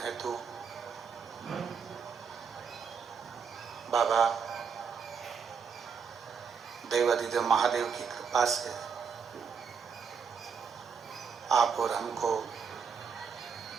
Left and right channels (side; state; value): left; quieter; 6.2 dB